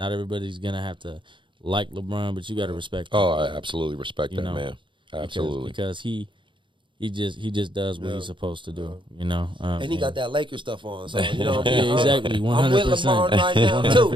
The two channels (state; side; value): late; left; 0.24 ms